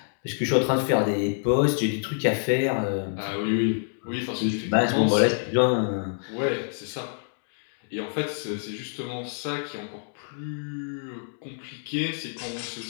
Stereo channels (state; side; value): silent; right; digital silence